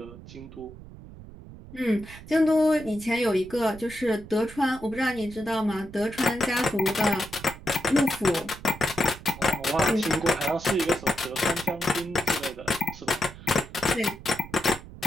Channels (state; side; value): noise; right; rumble, 16 dB below the sound